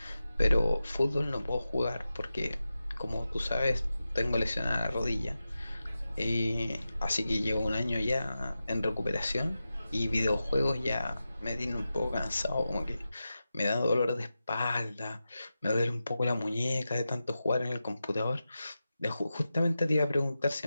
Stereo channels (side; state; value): both; inverted; correlation -0.92